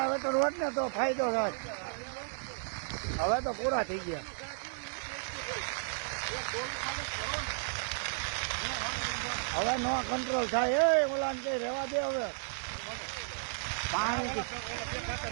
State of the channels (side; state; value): left; silent; digital silence